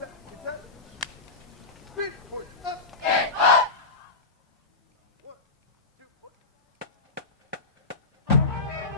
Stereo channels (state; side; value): quieter; right; 3.7 dB